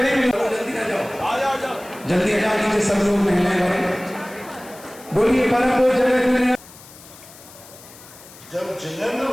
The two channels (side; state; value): left; noise; hiss, 20 dB below the sound